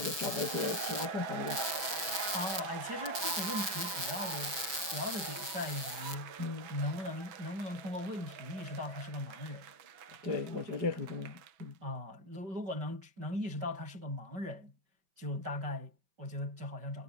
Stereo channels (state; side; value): late; left; 5.5 ms